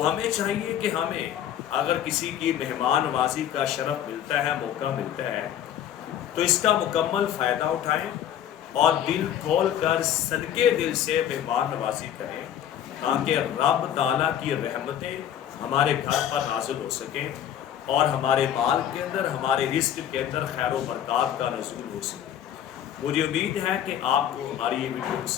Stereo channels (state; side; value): quieter; right; 10.3 dB